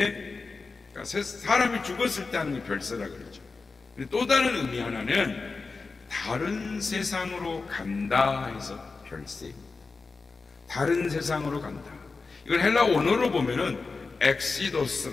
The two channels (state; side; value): quieter; right; 4.2 dB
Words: 그러니까 사람이 죽었을 때 하는 게 별세라 그러죠. 또 다른 의미 하나는 다른 세상으로 간다 해서 별세입니다. 다른 세상으로 간다. 이걸 헬라 원어로 보면은